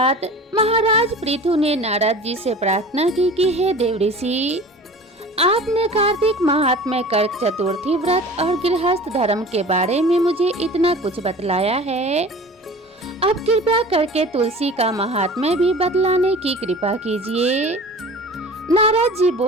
महाराज पृथु ने नारद जी से प्रार्थना की कि हे देव ऋषि, आपने कार्तिक महात्म्य कर्क चतुर्थी व्रत और गृहस्थ धर्म के बारे में मुझे इतना कुछ बतलाया है, अब कृपया करके तुलसी का महात्म्य भी बतलाने की कृपा कीजिए। नारद जी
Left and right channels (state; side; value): normal; both; correlation 0.40